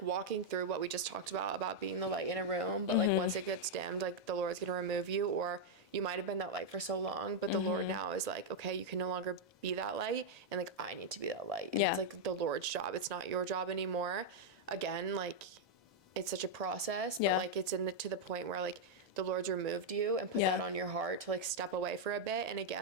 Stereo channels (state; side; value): normal; both; correlation -0.02